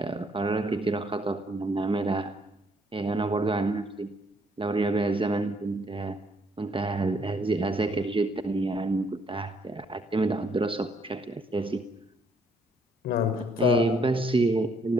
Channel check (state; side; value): normal; both; correlation 0.68